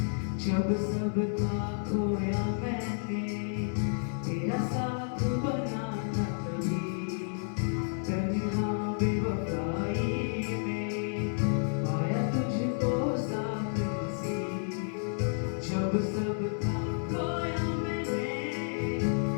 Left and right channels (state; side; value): silent; right; 57 dB below the other